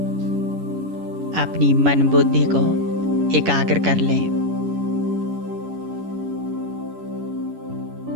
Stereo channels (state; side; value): late; left; 11 ms